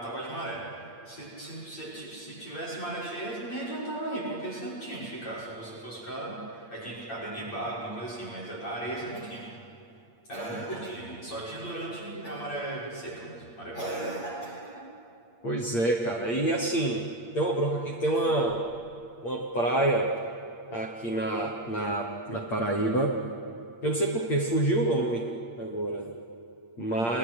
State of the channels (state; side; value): late; right; 8.6 ms